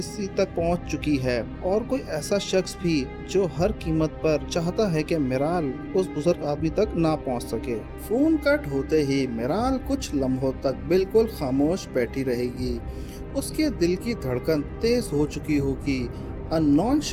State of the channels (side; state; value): both; identical; correlation 1.00